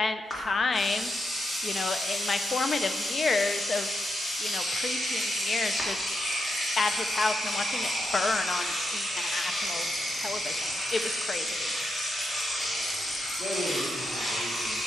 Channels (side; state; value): both; normal; correlation 0.84